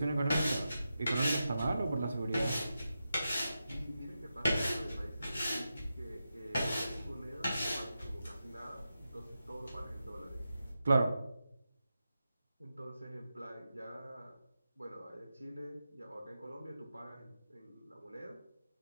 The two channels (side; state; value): both; inverted; correlation -0.90